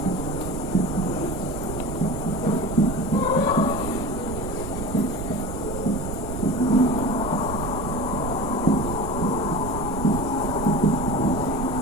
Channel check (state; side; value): noise; right; rumble, 7 dB below the sound